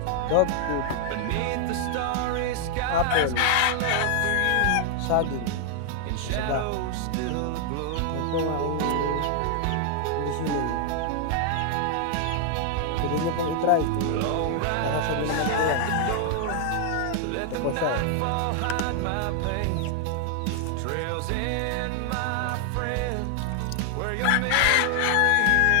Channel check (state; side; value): different; both; correlation 0.00